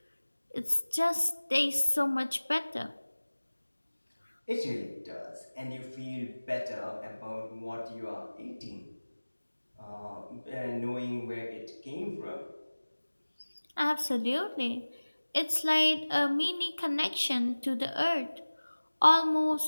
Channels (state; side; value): inverted; both; correlation -1.00